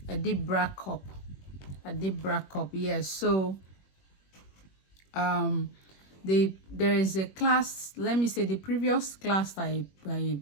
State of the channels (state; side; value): late; right; 21 ms